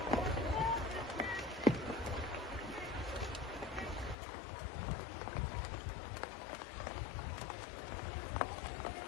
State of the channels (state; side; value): drops out; right; at 4.2 s